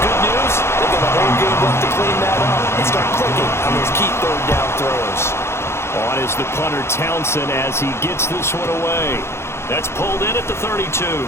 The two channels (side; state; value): right; late; 0.12 ms